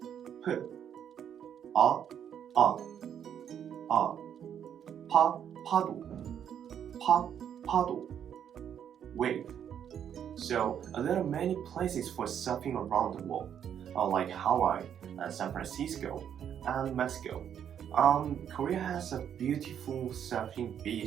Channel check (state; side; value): quieter; left; 9.0 dB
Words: P, 파도, 파도, wave. So there are many places for surfing around the world, like Hawaii, San Francisco, and Mexico. Korea has a beautiful surfing